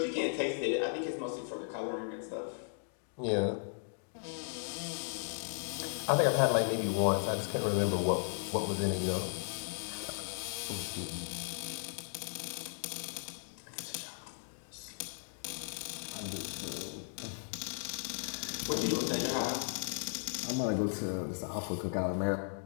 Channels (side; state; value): right; silent; digital silence